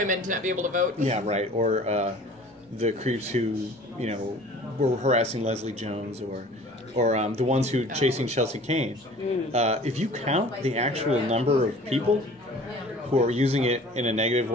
to not be able to vote. Yeah, right. Or the creeps who were harassing Leslie Jones, or the ones who chasing Chelsea Kane. If you count the actual number of people who are using it in a negative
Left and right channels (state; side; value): normal; both; correlation 0.47